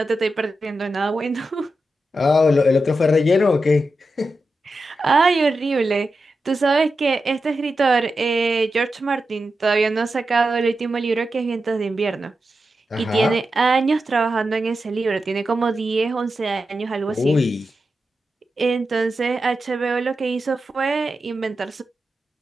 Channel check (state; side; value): normal; both; correlation 0.90